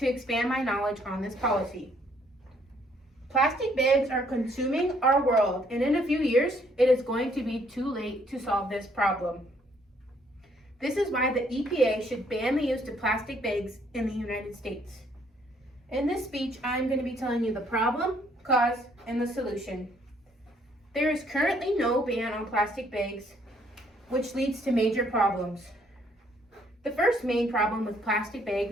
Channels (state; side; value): normal; both; correlation 0.66